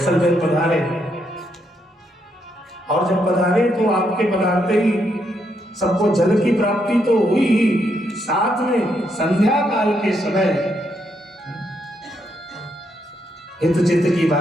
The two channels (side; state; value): both; normal; correlation 0.78